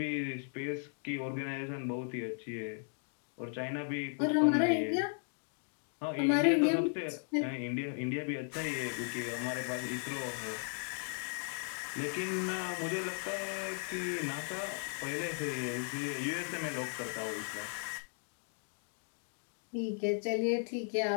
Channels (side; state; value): right; silent; 54 dB below the other